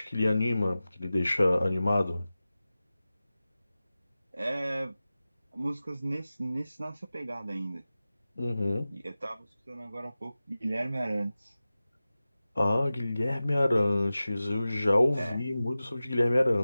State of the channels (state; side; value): inverted; both; correlation -0.95